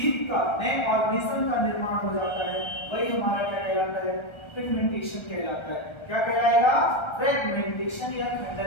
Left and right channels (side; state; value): right; late; 1.3 ms